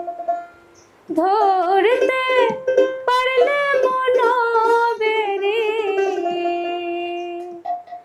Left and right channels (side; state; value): both; identical; correlation 1.00